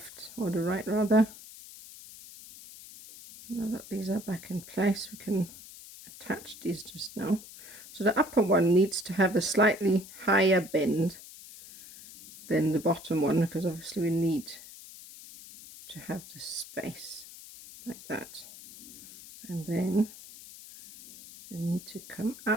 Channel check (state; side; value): noise; left; hiss, 17 dB below the sound